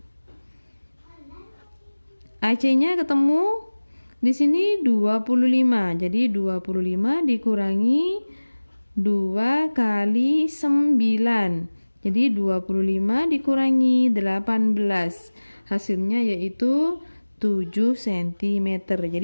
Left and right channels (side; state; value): both; inverted; correlation -1.00